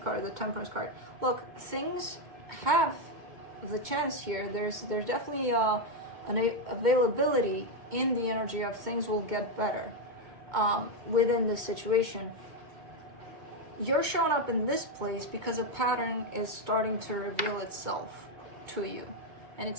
card, the Temperance card. Look, things have the chance here. There's definitely an availability in the energy of things will get better within this situation. you're showing up in this place because a pattern is starting to reveal itself to you. And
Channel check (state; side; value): late; left; 2.2 ms